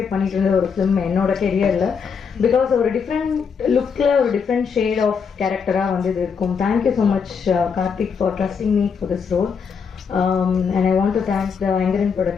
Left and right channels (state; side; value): quieter; right; 6.2 dB